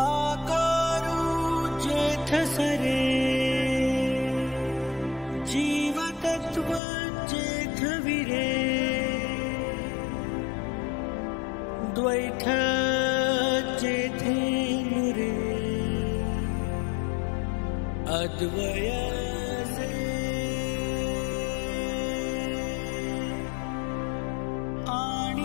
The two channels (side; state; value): right; drops out; at 6.8 s